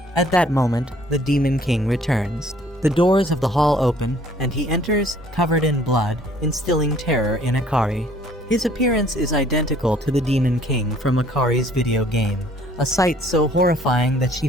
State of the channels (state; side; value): normal; both; correlation 0.58